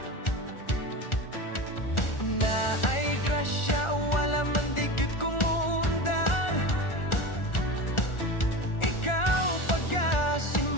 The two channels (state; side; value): late; right; 1.4 ms